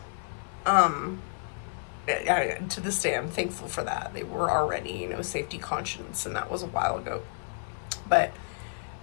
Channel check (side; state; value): right; silent; 58 dB below the other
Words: To this day, I'm thankful for that. They were already, you know, safety conscious, and that was a while ago. But